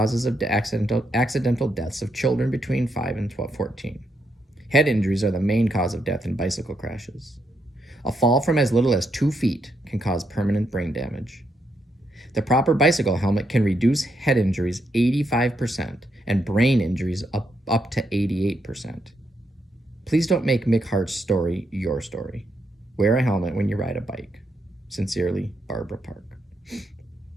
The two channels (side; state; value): both; normal; correlation 0.79